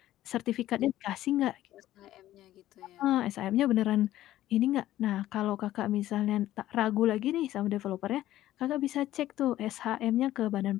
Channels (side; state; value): right; quieter; 14.1 dB